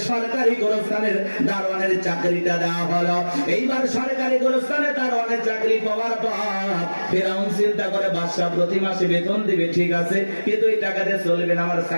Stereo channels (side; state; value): both; inverted; correlation -1.00